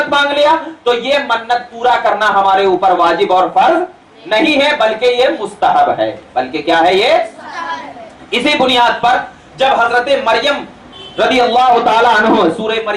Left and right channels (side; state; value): both; identical; correlation 1.00